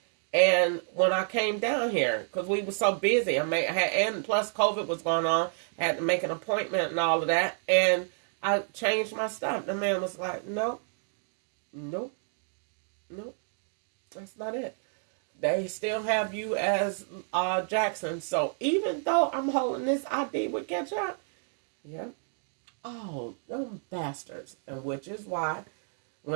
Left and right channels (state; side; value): silent; left; 57 dB below the other